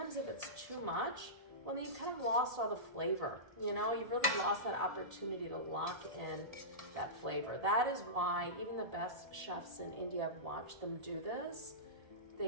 if it's too much, well, then you kind of lost all the flavor. You know, you've really lost that opportunity to lock in that flavor. That is why even the best chefs in India, I've watched them do this.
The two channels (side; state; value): left; late; 1.7 ms